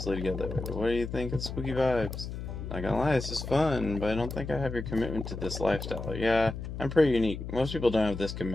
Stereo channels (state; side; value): noise; left; hum, 7 dB below the sound